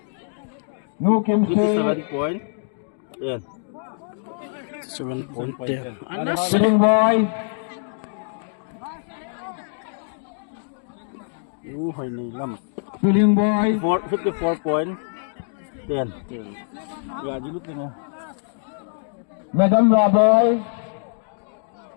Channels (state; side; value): silent; right; digital silence